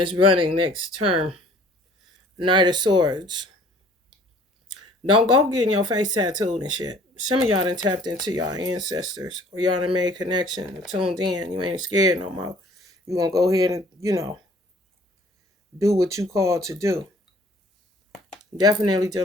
running next term. Knight of Swords. Don't go getting your face tattooed and shit. Some of y'all done tapped into y'all ancestors, or y'all done made connection, tuned in. You ain't scared no more. You gonna go ahead and, do what you called to do. Definitely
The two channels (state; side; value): normal; both; correlation 0.54